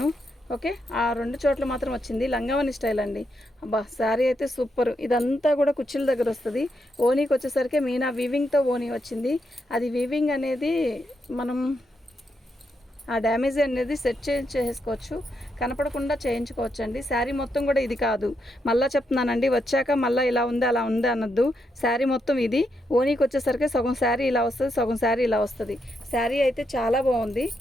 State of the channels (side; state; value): both; normal; correlation 0.81